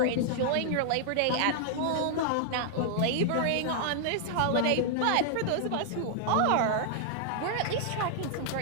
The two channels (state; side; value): different; both; correlation -0.01